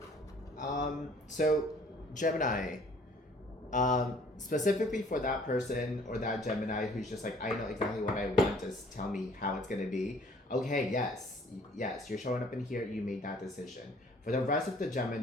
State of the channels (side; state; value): both; normal; correlation 0.56